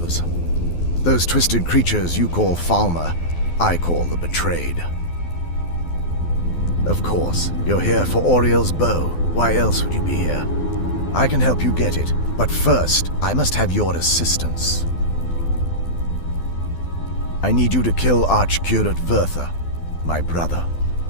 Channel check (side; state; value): right; late; 12 ms